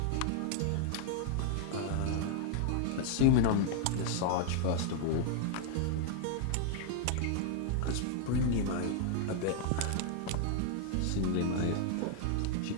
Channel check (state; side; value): different; both; correlation 0.00